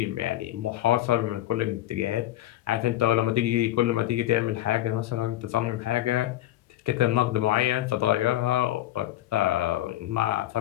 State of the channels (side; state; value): right; quieter; 14.2 dB